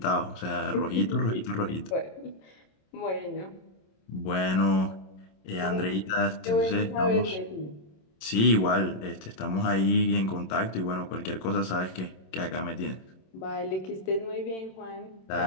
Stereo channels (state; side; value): late; right; 27 ms